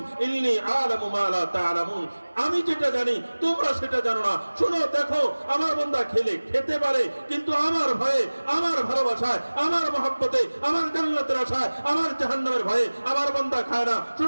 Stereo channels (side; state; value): both; inverted; correlation -1.00